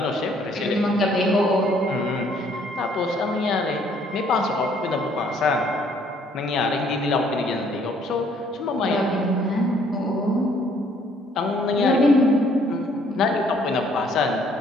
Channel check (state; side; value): normal; both; correlation 0.63